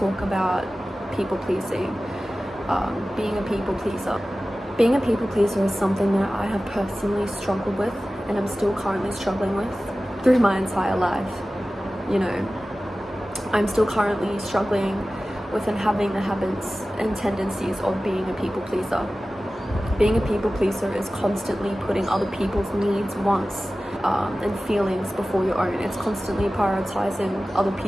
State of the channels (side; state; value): both; normal; correlation 0.96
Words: about people pleasing, being a people pleaser. Being a people pleaser is something that I have personally struggled with and I'm still currently struggling with through my entire life. You know, I'm still currently struggling with and having the habits and tendencies of being a people pleaser. Being a people pleaser is constantly putting other people's needs, wants, and feelings before your own. It's constantly prioritizing other